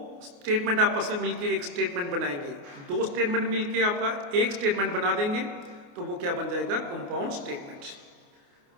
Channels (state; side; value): late; left; 28 ms